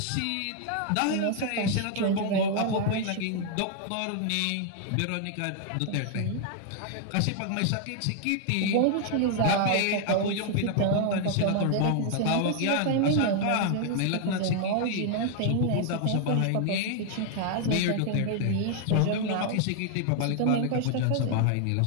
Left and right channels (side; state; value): both; different; correlation 0.00